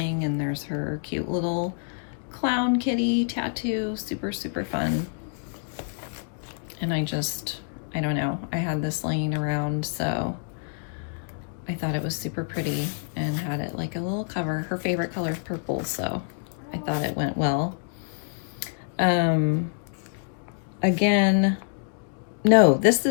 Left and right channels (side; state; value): right; silent; digital silence